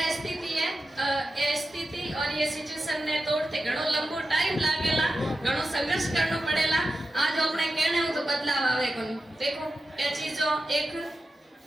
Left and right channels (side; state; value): both; normal; correlation 0.91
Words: स्थिति है ये स्थिति और ये सिचुएशन ने तोड़ते घणो लंबो टाइम लागेला घणो संघर्ष करनो पड़ेला आज अपने कहने हो तो बदलाव आवे कोनी देखो ये चीजों एक